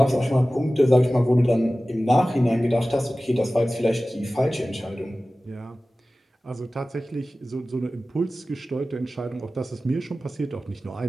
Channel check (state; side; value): normal; both; correlation 0.96